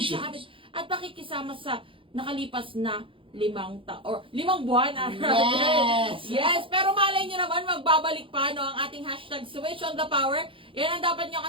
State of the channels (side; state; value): left; late; 0.25 ms